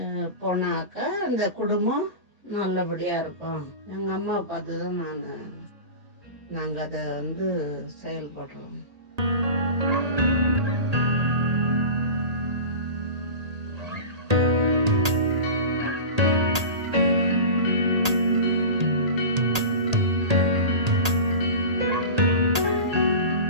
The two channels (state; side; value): late; left; 1.8 ms